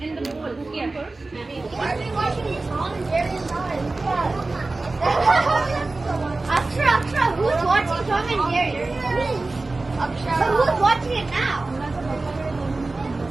in the bowl. Here. Why are we watching this all in Jerry's eyes? Akshara, who's watching Tom and Jerry? Akshara. So who's watching it now?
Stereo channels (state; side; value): quieter; left; 3.3 dB